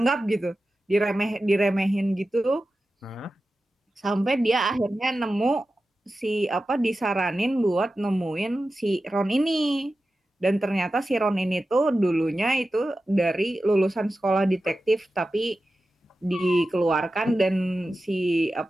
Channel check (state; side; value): normal; both; correlation 0.93